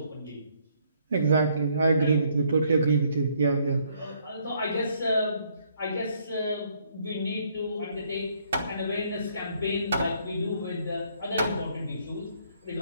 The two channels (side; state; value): both; inverted; correlation -0.68